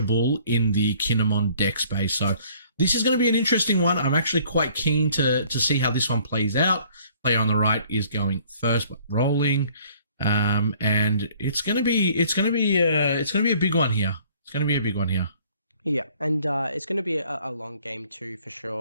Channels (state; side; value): inverted; both; correlation -0.57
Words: in the Kinemon deck space. So this is going to be an interesting one. I'm actually quite keen to see how this one plays out. Player on the right is going first, but rolling. And it's going to be a big one here. It's going to be a big one here. Yeah, and it's going to be a long game too, for